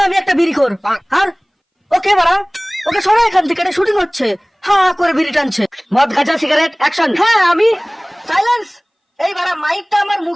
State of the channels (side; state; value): both; identical; correlation 1.00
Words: আমি একটা বিড়িখোর। আর ওকে বাড়া, ওকে সরা এখান থেকে, এটা শুটিং হচ্ছে। হ্যাঁ করে বিড়ি টানছে, মদ গাঁজা সিগারেট অ্যাকশন। হ্যাঁ আমি। সাইলেন্স। এই বাড়া মাইকটা আমার